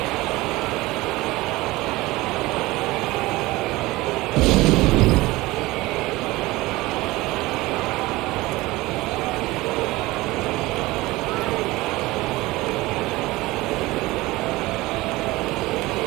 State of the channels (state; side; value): quieter; left; 20.0 dB